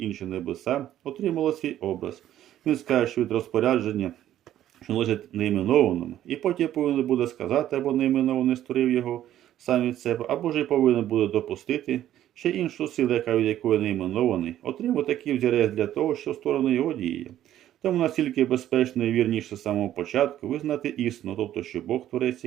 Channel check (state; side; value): quieter; left; 12.2 dB